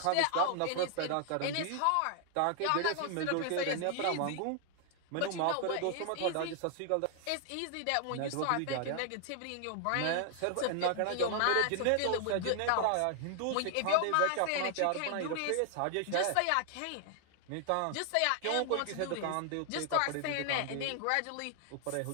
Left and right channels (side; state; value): both; different; correlation 0.00